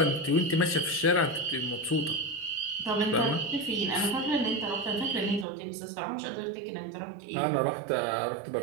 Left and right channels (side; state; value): left; drops out; at 5.5 s